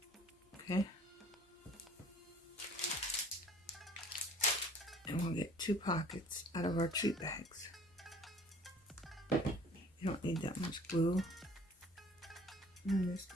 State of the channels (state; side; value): normal; both; correlation 0.52